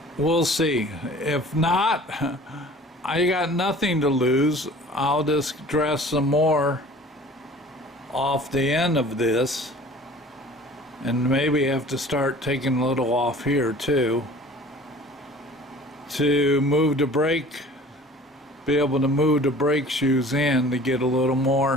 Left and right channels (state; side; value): normal; both; correlation 0.46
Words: We'll see. If not, I got nothing to lose. I'll just dress some more off the end of this, and maybe have to start taking a little off here too to move the brake, be able to move the brake shoes in to get a little